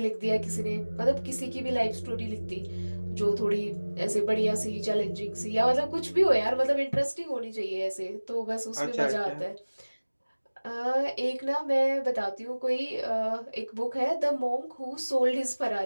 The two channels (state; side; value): inverted; both; correlation -1.00